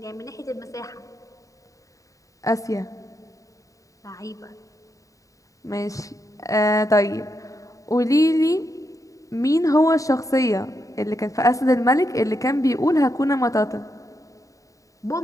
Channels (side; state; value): right; late; 0.16 ms